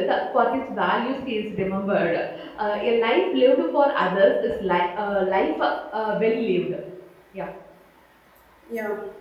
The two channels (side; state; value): both; identical; correlation 1.00